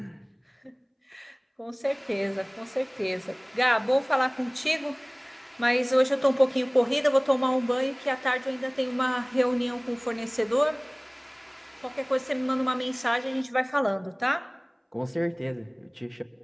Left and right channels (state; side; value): identical; both; correlation 1.00